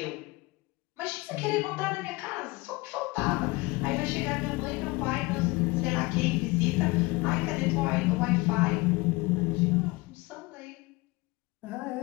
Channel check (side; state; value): right; quieter; 23.3 dB